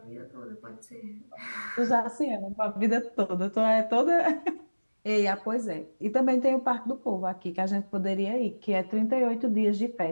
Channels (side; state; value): both; inverted; correlation -1.00